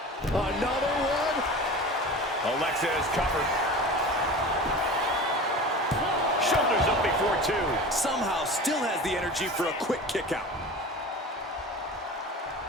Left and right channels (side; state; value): both; normal; correlation 0.34